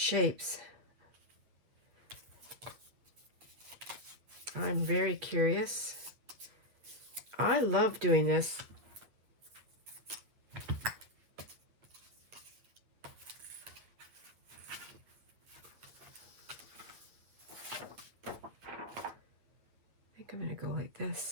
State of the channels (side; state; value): left; late; 8.9 ms